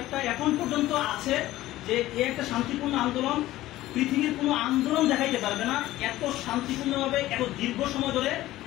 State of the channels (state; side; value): quieter; right; 15.8 dB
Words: এখন পর্যন্ত আছে যে এই একটা শান্তিপূর্ণ আন্দোলন, পৃথিবীর কোনো আন্দোলন দেখাইতে পারবে না এত শান্তিপূর্ণভাবে এত দীর্ঘ সময় ধরে